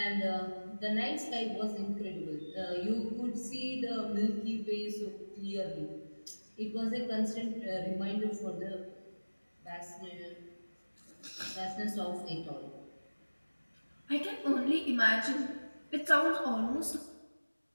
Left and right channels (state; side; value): inverted; both; correlation -1.00